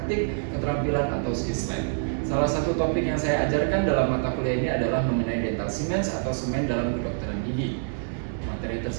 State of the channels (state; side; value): silent; left; 61 dB below the other